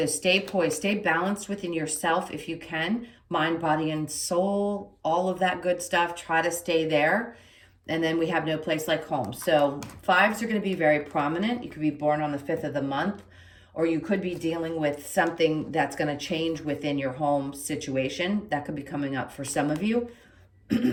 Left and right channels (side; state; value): both; identical; correlation 1.00